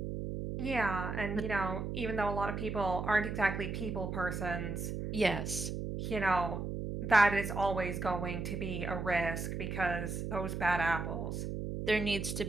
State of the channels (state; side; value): noise; right; hum, 4 dB below the sound